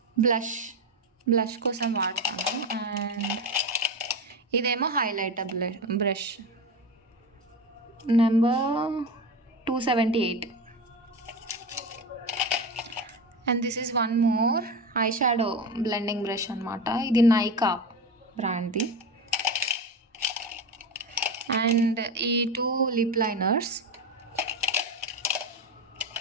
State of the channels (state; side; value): normal; both; correlation 0.22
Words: బ్లష్ కోసం వాడతాను. అండ్ ఇదేమో highlighter brush, number 278. And this is one more eye shadow blending brush అనమాట. ఇది నైకా బ్రాండ్ది. అండ్ ఈ 2 లిప్ లైనర్స్.